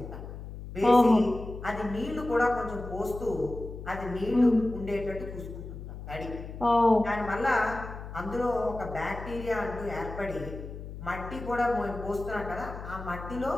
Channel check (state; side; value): noise; left; hum, 10 dB below the sound